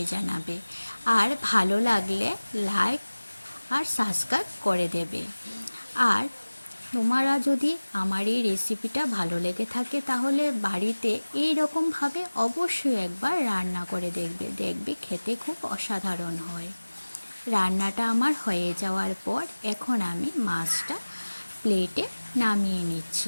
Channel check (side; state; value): both; inverted; correlation -1.00